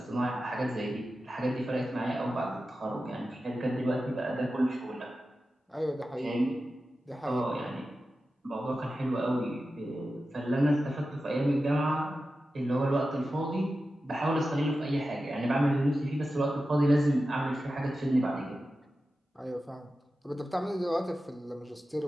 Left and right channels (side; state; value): both; normal; correlation 0.93